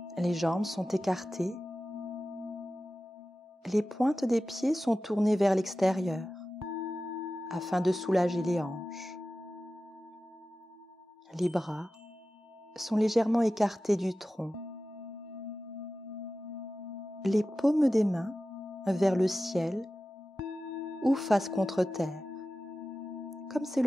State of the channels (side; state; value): both; normal; correlation 0.94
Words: Les jambes sont écartées. Les pointes des pieds sont tournées vers l'extérieur afin de soulager les hanches. Les bras sont légèrement écartés du tronc. Les paumes des mains vers le ciel ou face contre terre, comme c'est